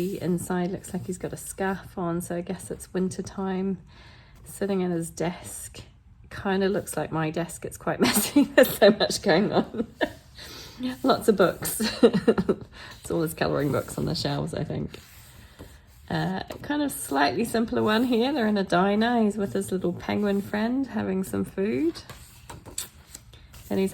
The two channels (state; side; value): identical; both; correlation 1.00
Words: inside. Looks like he's got a scarf on, so I guess it's winter time. Sitting at his desk. Kind of looks like my desk. It's quite messy. There's so much going on. Lots of books. It's all his colouring books on the shelves, I think. Kind of slightly simpler one here. They're in a diner. He's with his little penguin friend having some food. Then he's